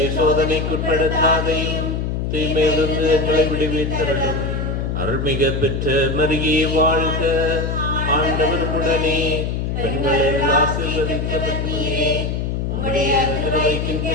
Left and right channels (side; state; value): left; noise; hum, 1 dB below the sound